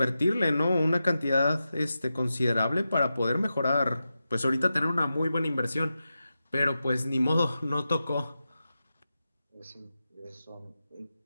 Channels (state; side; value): inverted; both; correlation -0.91